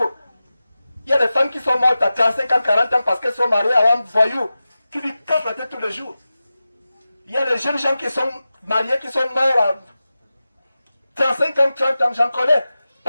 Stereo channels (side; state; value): both; inverted; correlation -0.94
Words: Il y a des femmes qui sont mortes à 35 ans, 40 ans parce qu'elles sont mariées à un voyou qui lui casse la tête tous les jours. Il y a des jeunes gens qui sont mariés, qui sont morts à 35 ans, 30 ans, j'en connais.